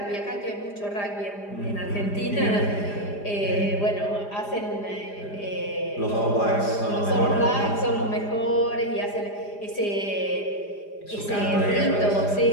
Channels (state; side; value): late; right; 4.9 ms